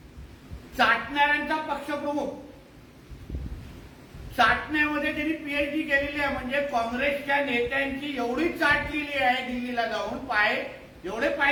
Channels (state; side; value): identical; both; correlation 1.00